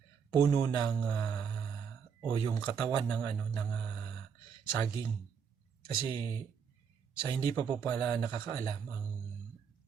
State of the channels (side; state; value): left; quieter; 6.8 dB